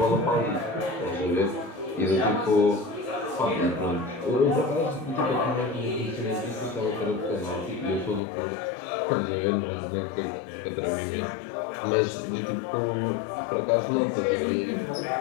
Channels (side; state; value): right; drops out; at 8.2 s